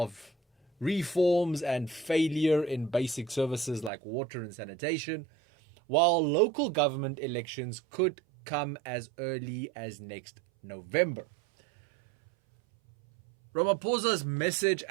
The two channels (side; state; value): left; drops out; at 3.9 s